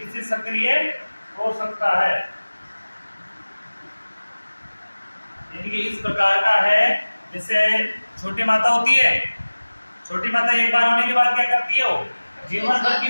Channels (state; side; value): inverted; both; correlation -1.00